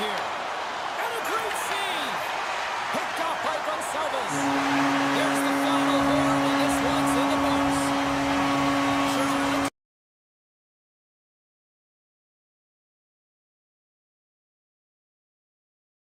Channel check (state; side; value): identical; both; correlation 1.00